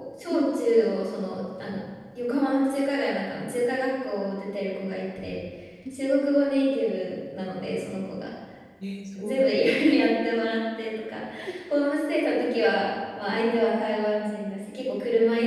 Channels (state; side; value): identical; both; correlation 1.00